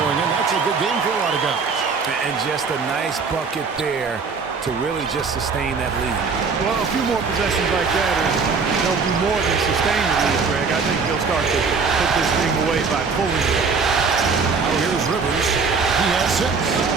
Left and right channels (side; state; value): left; quieter; 5.0 dB